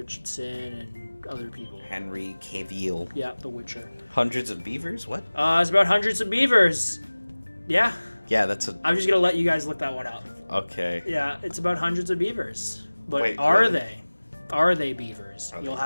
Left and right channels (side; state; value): both; inverted; correlation -1.00